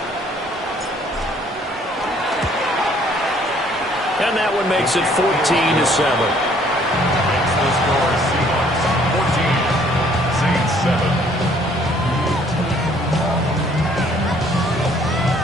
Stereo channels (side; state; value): both; normal; correlation 0.61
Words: And that one makes it 14-7. Makes the score Seahawks 14, Saints 7.